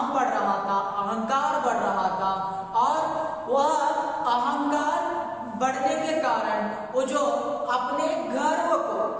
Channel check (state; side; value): identical; both; correlation 1.00